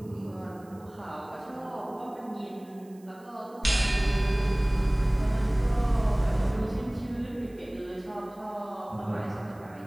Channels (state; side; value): noise; right; hiss, 29 dB below the sound